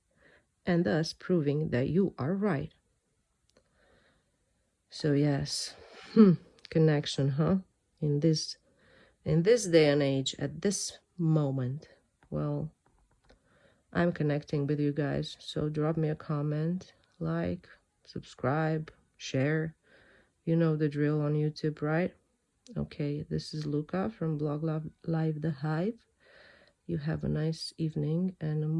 and thus proving that you are right. So yes, connection, huh? In this in this day and age, at this moment, well, I'm connecting with you guys. So drop me a comment, like, subscribe, share. You know the drill on YouTube, right? Okay, this is Luca from Blog Live the Hive. You have a nice evening and a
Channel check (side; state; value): both; identical; correlation 1.00